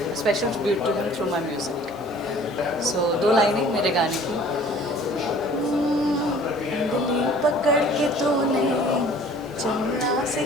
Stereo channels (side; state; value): right; noise; hiss, 28 dB below the sound